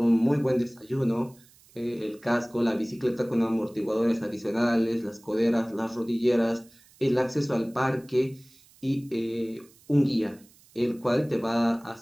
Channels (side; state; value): right; noise; hiss, 28 dB below the sound